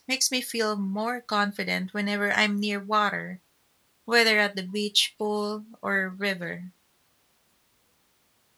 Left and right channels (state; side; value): identical; both; correlation 1.00